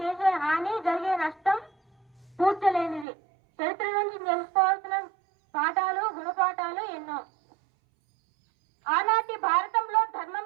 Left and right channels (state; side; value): drops out; left; at 3.1 s